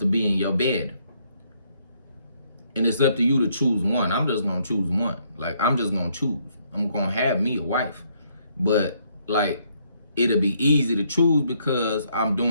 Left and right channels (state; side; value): inverted; both; correlation -0.70